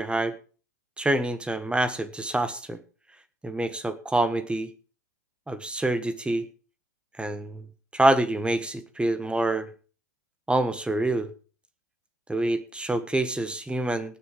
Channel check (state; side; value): normal; both; correlation 0.84